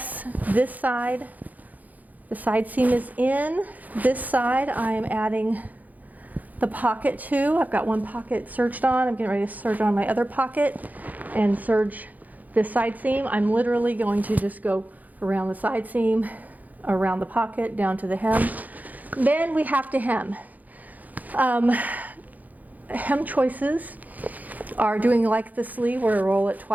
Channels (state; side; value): late; left; 0.080 ms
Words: This side, the side seam is in. This side, I am adding the pocket to. I've got one pocket serged on. I'm getting ready to serge on my other pocket and serge this side seam. I'm literally going to just go around the side seam, around the pocket, down to the hem. Then we have to hem. Hem choices are doing like the sleeve where I roll it